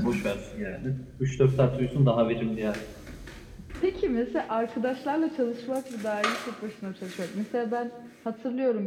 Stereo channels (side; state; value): both; identical; correlation 1.00